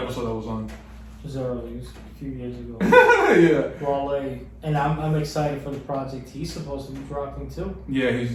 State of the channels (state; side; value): identical; both; correlation 1.00